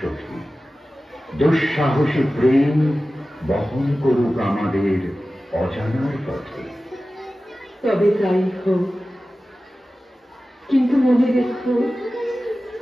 দুঃসাহসী প্রেম বহন করুক আমাদের অজানার পথে। তবে তাই হোক, কিন্তু মনে রেখো,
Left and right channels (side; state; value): both; normal; correlation 0.95